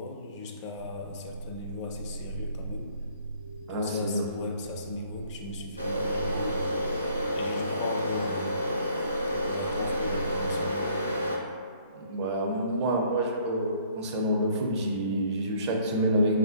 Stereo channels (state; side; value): inverted; both; correlation -0.60